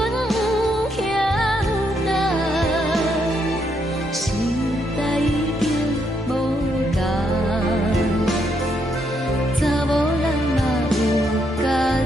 欠等，时代已经无同，查某人嘛有家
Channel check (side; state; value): both; normal; correlation 0.76